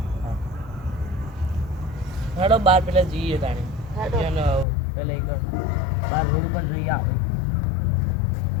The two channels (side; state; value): right; drops out; at 4.7 s